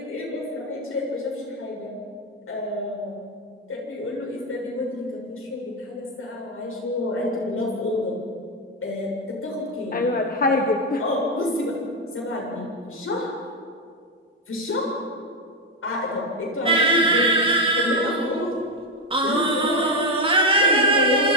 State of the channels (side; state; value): both; normal; correlation 0.08